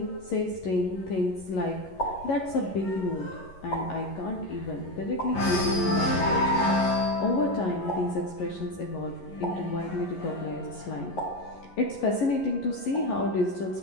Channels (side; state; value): right; late; 11 ms